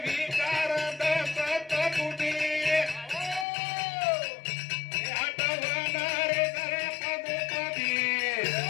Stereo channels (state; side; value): drops out; right; at 3.5 s